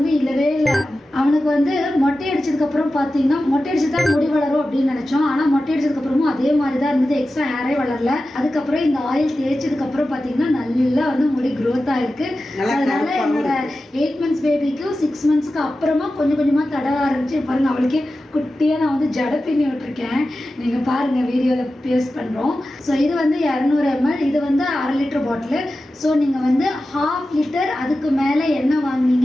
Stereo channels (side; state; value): both; normal; correlation 0.93